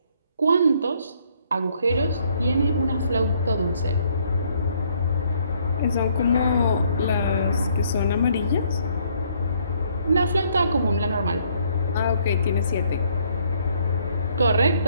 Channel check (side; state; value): both; inverted; correlation -0.66